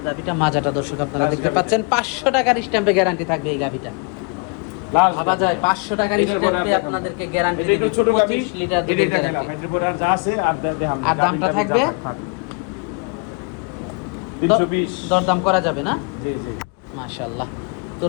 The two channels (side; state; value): right; quieter; 34.4 dB